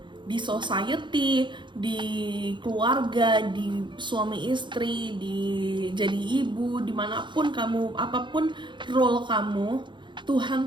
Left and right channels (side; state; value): left; late; 0.23 ms